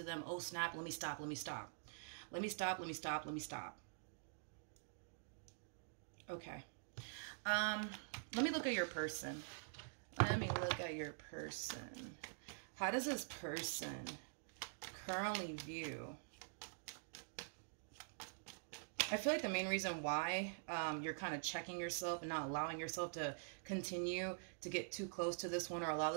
them. Oh snap, let me stop, let me stop. Let me stop, let me stop, let me stop. Okay. Let me look at your person. Let me look at your person. How does this person currently view? I feel like the main reason why you're kind of checking yourself and not allowing yourself to continue to get too close to this one or allow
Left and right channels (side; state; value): left; silent; digital silence